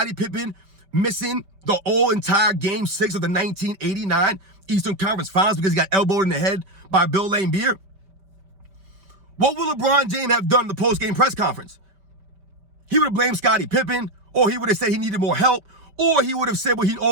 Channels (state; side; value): late; left; 5.2 ms